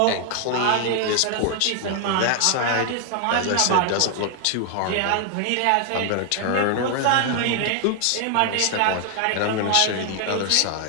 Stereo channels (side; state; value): both; different; correlation 0.00